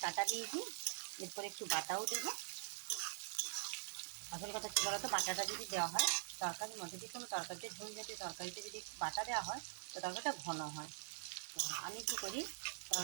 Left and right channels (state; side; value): silent; left; digital silence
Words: কাটা দিয়েছি, এরপরে একটু বাটাও দেবো। আসল কথা কী বলতো, বাটাটা যদি দেওয়া হয় তরকারির মধ্যে, যে কোনো তরকারিতে, ঝোল জাতীয় তরকারিতে যদি বাটা দেওয়া হয় তো তরকারিটা ঘন হয়। আমি কী করি,